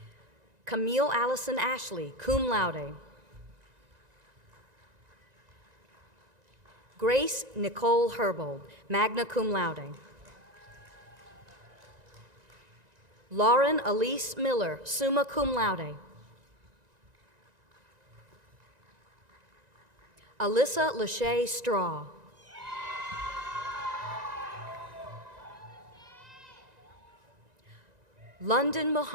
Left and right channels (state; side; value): late; left; 1.9 ms